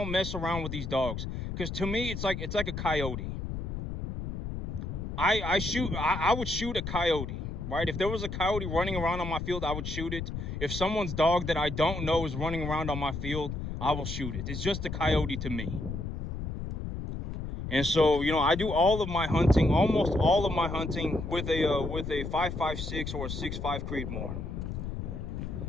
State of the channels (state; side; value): noise; left; rumble, 5 dB below the sound